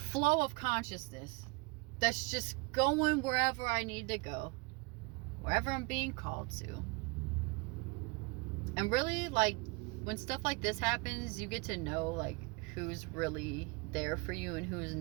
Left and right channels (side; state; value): left; quieter; 27.2 dB